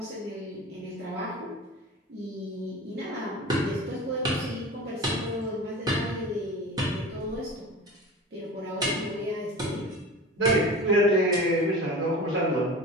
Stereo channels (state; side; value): normal; both; correlation 0.34